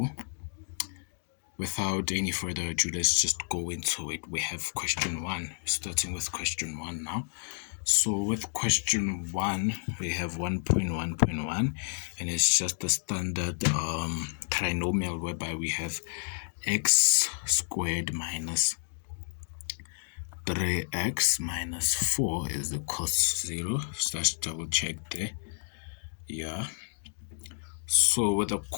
without any further ado, let's just go into it. We have question 1, starting with question 1 now. So with question 1, we have 1.1.1, and it's just a standard trinomial whereby we have x squared minus 3x minus 4 is equals to 0. So let's double check there. Yeah. So with a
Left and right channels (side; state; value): right; silent; digital silence